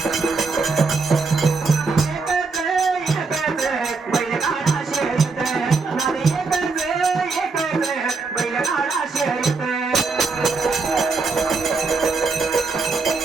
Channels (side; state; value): left; quieter; 4.3 dB